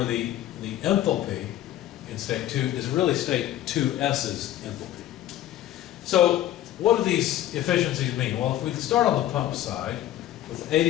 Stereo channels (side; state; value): right; quieter; 13.1 dB